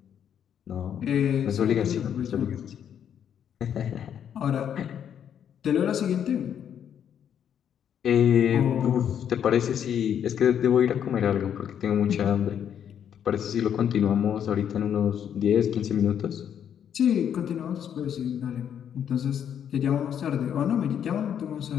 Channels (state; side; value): quieter; right; 9.0 dB